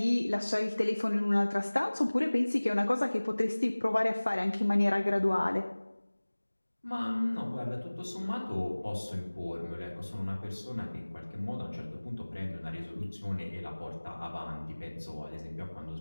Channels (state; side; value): inverted; both; correlation -1.00